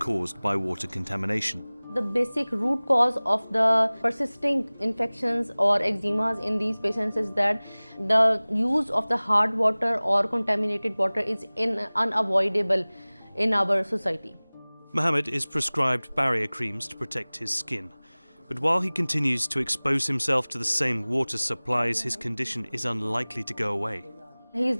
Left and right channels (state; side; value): inverted; both; correlation -1.00